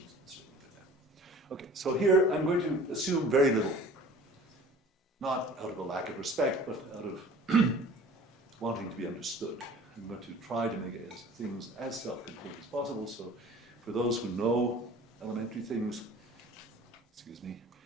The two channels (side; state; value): both; normal; correlation 0.46